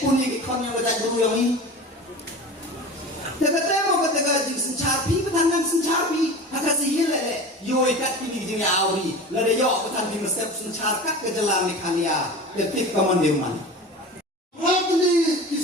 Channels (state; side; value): normal; both; correlation 0.34